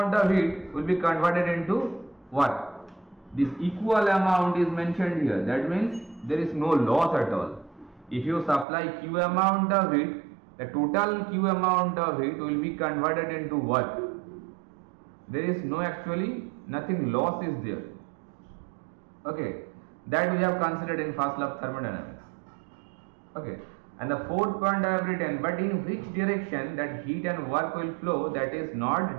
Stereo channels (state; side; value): drops out; left; at 8.7 s